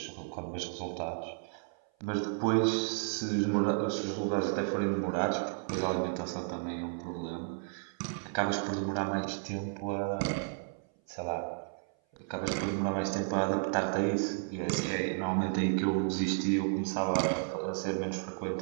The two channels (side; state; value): left; silent; 56 dB below the other